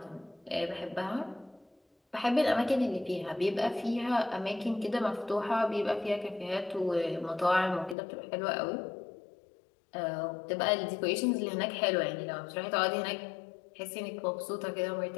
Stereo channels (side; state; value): right; drops out; at 8.0 s